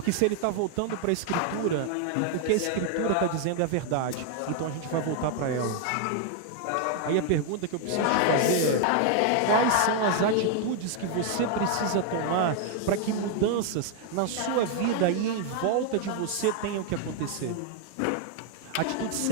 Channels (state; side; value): different; both; correlation 0.00